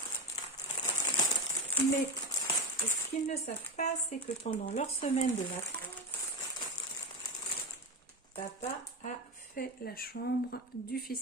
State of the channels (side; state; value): both; normal; correlation 0.17